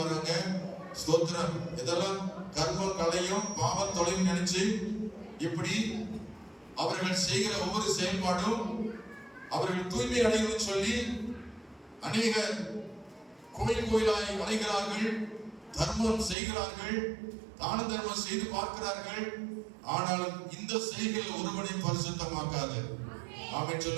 வராங்க. ஸ்தோத்திரம். இதெல்லாம் கர்மம் கலையும் பாவம் தொலையும் நினைச்சு இப்படி அவர்கள் செய்கிற ஒவ்வொரு செயல்பாடும் அவர்கள் தூய்மை அடையணும்னு சொல்லி அநேக கோயில் கோயிலாய் அலைகிறார்கள், தர்மம் செய்கிறார்கள், தான தர்மம் செய்து பார்க்கிறார்கள். ஆனாலும் இந்த செய்கைகள் ஒருவனை பரிசுத்தமாக்காது. ஆமென்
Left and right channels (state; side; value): drops out; left; at 16.4 s